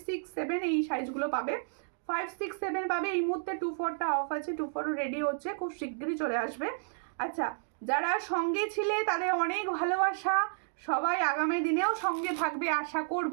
6, 7 এই সাইজগুলো পাবে, 5, 6, 7 পাবে। এই মুহূর্তে 24টা অফ আছে, 24 রেডি হচ্ছে, খুব শীঘ্রই চলে আসবে। আচ্ছা যারা সঙ্গে ছিলে তাদের অনেক ভালোবাসা, সবাই আগামী দিনেও সঙ্গে থাকবে আশা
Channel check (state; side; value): silent; left; digital silence